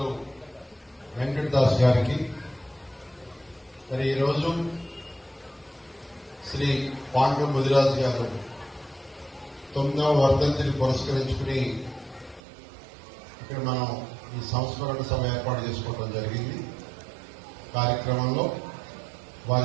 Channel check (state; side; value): drops out; left; at 12.4 s